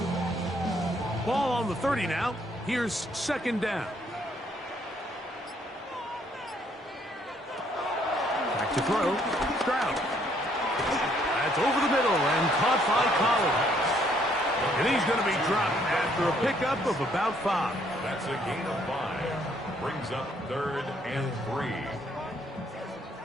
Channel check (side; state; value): both; normal; correlation 0.67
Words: Ball on the 30 now. Here's 2nd down. Back to throw. Stroud. That's over the middle and caught by Collins. And he's going to be dropped after a pickup of about 5. That's a gain of 5. Brings up 3rd and 3.